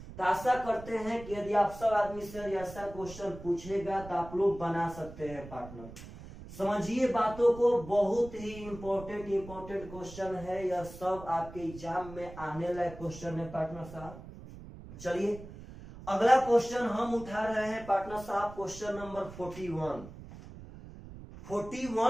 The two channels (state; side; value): noise; right; rumble, 15 dB below the sound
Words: तो आशा करते हैं कि यदि आप सब आदमी से ऐसा क्वेश्चन पूछेगा तो आप लोग बना सकते हैं पार्टनर। समझिए बातों को, बहुत ही इंपॉर्टेंट क्वेश्चन है, यह सब आपके एग्जाम में आने लायक क्वेश्चन है पार्टनर साहब। चलिए अगला क्वेश्चन हम उठा रहे हैं पार्टनर साहब, क्वेश्चन नंबर 41।